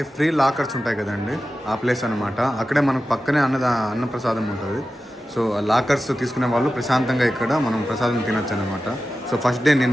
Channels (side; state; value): both; normal; correlation 0.93